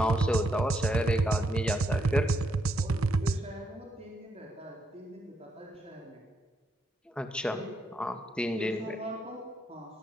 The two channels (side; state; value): both; normal; correlation 0.78